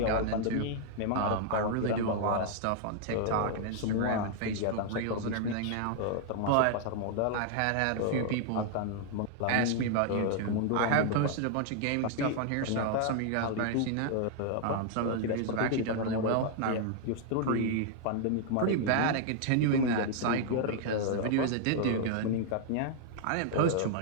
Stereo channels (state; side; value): different; both; correlation 0.00